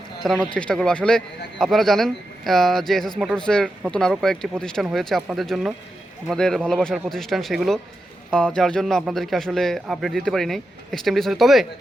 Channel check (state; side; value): normal; both; correlation 0.89